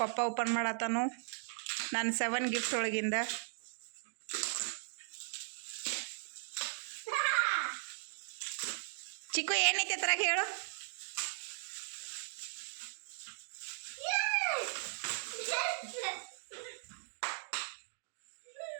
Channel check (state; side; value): silent; left; digital silence